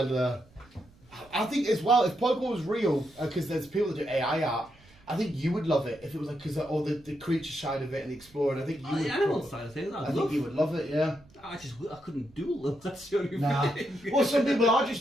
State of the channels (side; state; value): right; noise; rumble, 27 dB below the sound